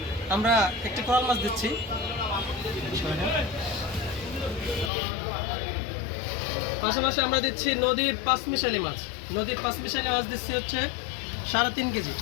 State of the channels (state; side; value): drops out; right; at 4.9 s